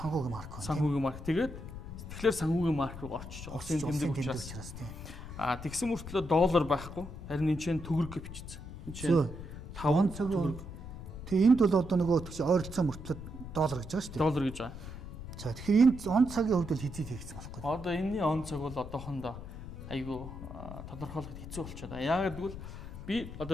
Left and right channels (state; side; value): noise; left; rumble, 11 dB below the sound